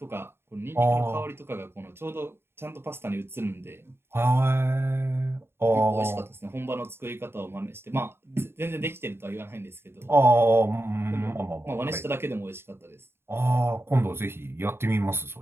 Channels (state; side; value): late; left; 0.11 ms